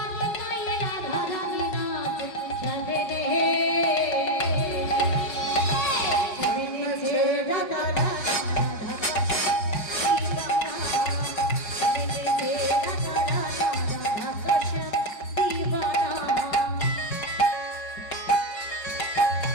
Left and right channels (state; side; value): late; right; 4.9 ms